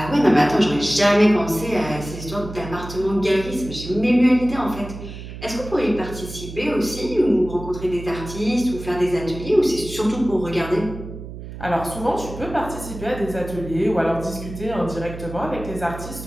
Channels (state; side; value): noise; right; hum, 11 dB below the sound